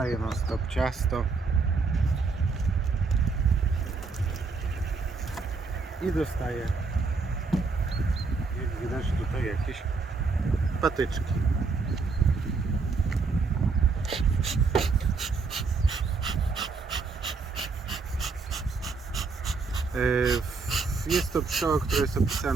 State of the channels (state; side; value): quieter; left; 4.4 dB